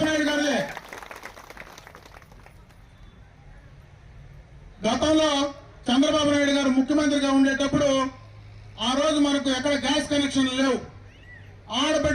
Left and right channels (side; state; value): both; identical; correlation 1.00